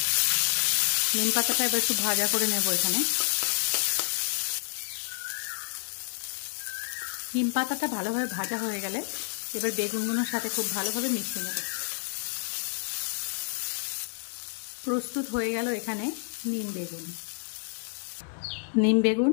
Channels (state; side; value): silent; right; digital silence